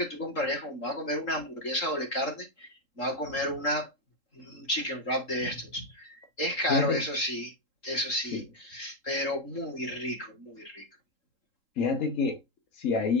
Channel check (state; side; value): late; right; 3.8 ms